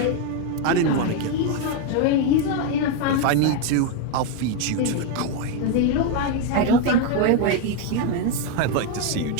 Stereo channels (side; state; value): both; different; correlation 0.01